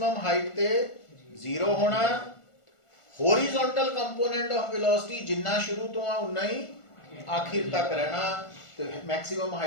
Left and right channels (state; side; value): late; right; 1.4 ms